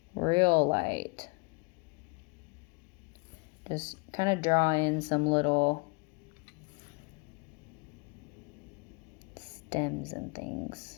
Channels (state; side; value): quieter; right; 32.9 dB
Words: real light, just kind of draw in some little stems and things.